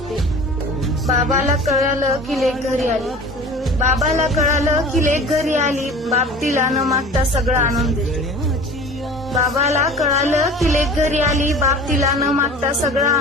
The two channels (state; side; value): normal; both; correlation 0.41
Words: बाबाला कळालं की लेक घरी आली. बाबाला कळालं की लेक घरी आली. बाप तिला न मागता सगळं आणून देते. बाबाला कळालं की लेक घरी आली. बाप तिला न मागता सगळं